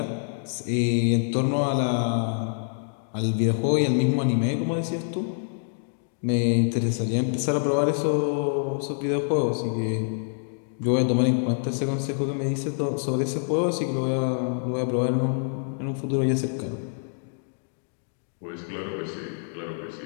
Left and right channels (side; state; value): right; silent; digital silence